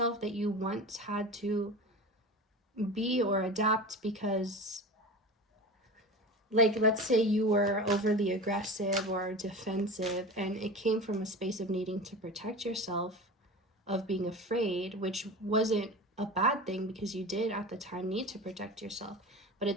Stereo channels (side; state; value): both; normal; correlation 0.31